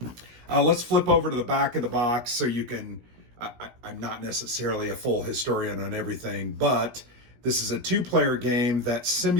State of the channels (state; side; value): late; left; 17 ms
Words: Let's flip over to the back of the box so you can, I'm not necessarily a full historian on everything, but this is a 2-player game that